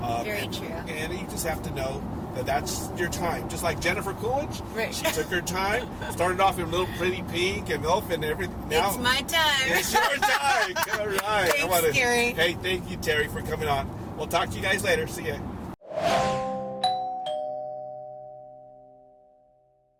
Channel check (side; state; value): both; identical; correlation 1.00